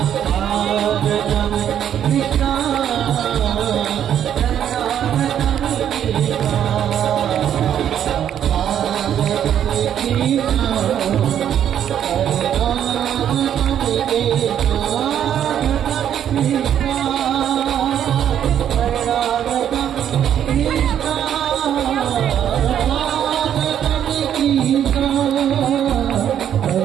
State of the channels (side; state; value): left; quieter; 9.8 dB